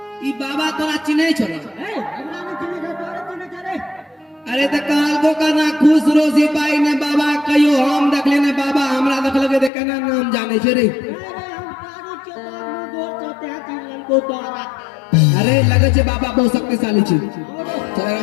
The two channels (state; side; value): drops out; right; at 9.7 s